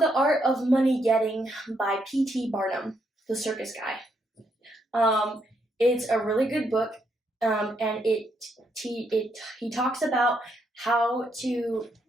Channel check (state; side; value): normal; both; correlation 0.76